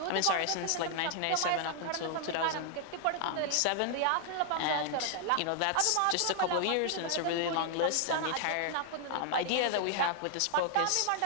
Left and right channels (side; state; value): both; different; correlation 0.00